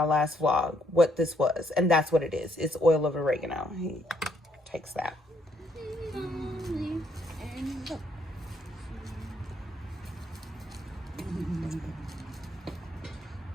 last vlog what this was, and that's what it is. It's oil of oregano. He takes that.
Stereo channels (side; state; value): both; normal; correlation 0.71